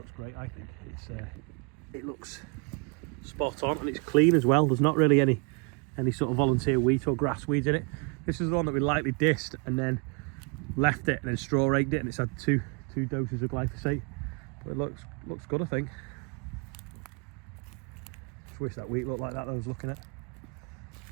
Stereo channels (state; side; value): quieter; left; 33.5 dB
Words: great, I think. It looks spot on, and it's clean as well. There's not really any sort of volunteer wheat or grass weeds in it. This is the one that we lightly dissed and then left it and then straw raked it, and it's had two doses of glyphosate. But it looks good, I think. Just wish that wheat looked like that I was looking at.